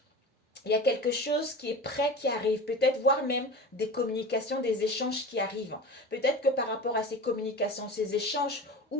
il y a quelque chose qui est prêt, qui arrive, peut-être voire même des communications, des échanges qui arrivent. Peut-être que par rapport à ces communications, ces échanges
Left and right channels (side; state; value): both; normal; correlation 0.33